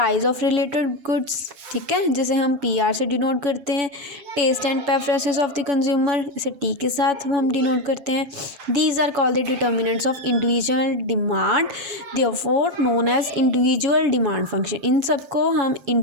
ऑफ रिलेटेड गुड्स, ठीक है, जिसे हम PR से डिनोट करते हैं. Taste and preferences of the consumer, इसे T के साथ हम डिनोट करते हैं. These are called the determinants of individual demand, therefore known as individual demand function. इन सबको हम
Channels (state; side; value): late; left; 7.1 ms